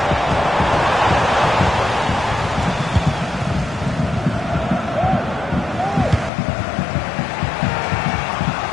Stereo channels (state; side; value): drops out; right; at 6.3 s